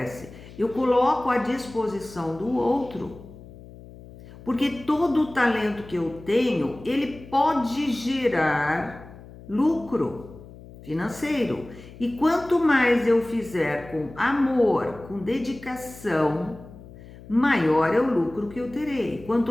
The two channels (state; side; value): noise; left; hum, 18 dB below the sound